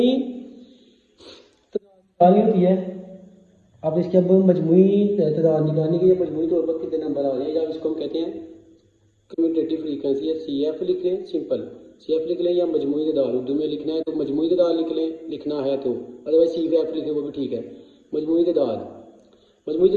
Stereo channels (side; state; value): both; identical; correlation 1.00